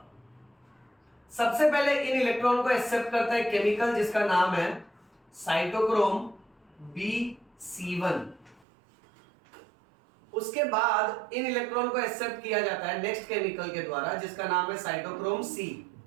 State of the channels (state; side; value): drops out; left; at 8.6 s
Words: सबसे पहले इन इलेक्ट्रॉन को एक्सेप्ट करता है केमिकल जिसका नाम है साइटोक्रोम BC1। उसके बाद इन इलेक्ट्रॉन को एक्सेप्ट किया जाता है नेक्स्ट केमिकल के द्वारा जिसका नाम है साइटोक्रोम C।